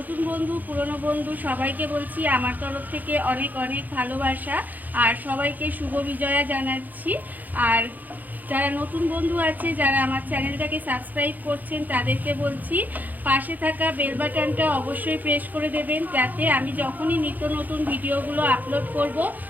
বন্ধু পুরনো বন্ধু সবাইকে বলছি আমার তরফ থেকে অনেক অনেক ভালোবাসা আর সবাইকে শুভ বিজয়া জানাচ্ছি। আর যারা নতুন বন্ধু আছে, যারা আমার চ্যানেলটাকে সাবস্ক্রাইব করছেন, তাদেরকে বলছি পাশে থাকা বেল বাটনটা অবশ্যই প্রেস করে দেবেন, যাতে আমি যখনই নিত্য নতুন ভিডিওগুলো আপলোড করব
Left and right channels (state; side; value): late; left; 0.083 ms